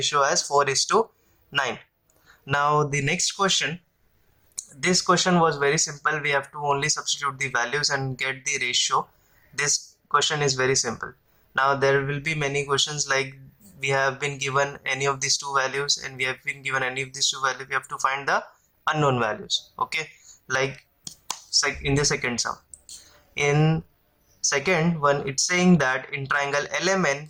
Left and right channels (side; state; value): both; identical; correlation 1.00